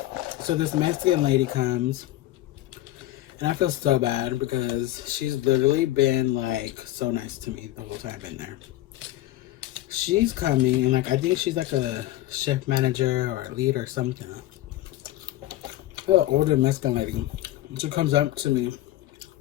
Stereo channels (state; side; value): quieter; right; 15.3 dB